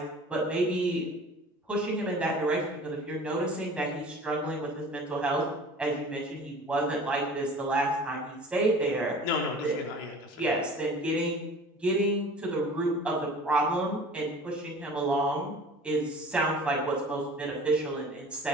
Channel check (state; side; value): normal; both; correlation 0.44